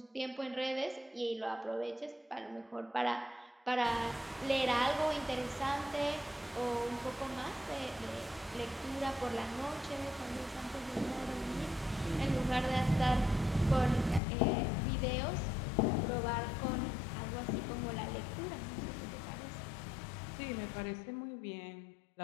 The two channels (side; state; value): right; drops out; at 14.2 s